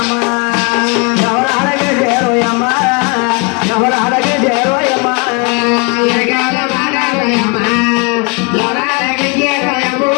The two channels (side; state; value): right; quieter; 31.2 dB